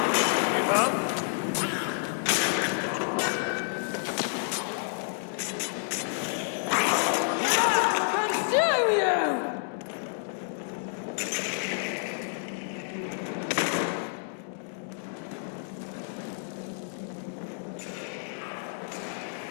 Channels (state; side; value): silent; right; digital silence